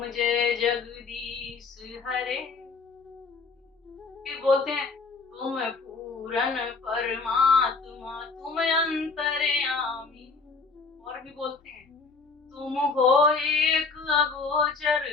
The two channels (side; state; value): right; quieter; 4.4 dB